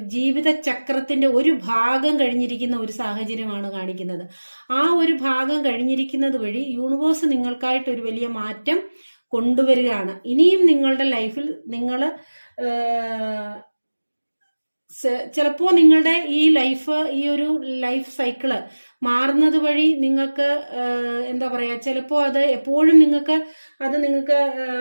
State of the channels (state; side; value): inverted; both; correlation -1.00